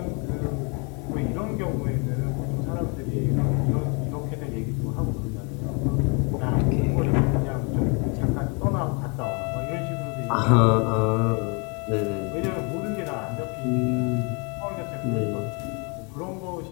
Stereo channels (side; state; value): right; quieter; 33.7 dB